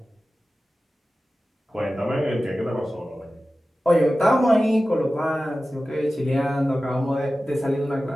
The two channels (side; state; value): both; normal; correlation 0.95